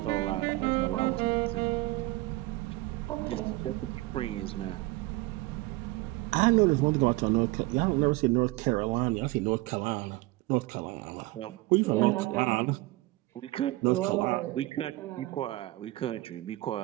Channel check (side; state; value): left; quieter; 19.8 dB